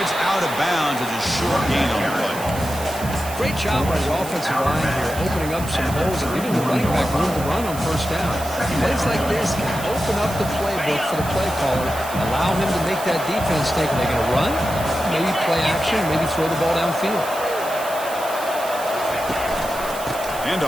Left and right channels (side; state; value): right; noise; hiss, 12 dB below the sound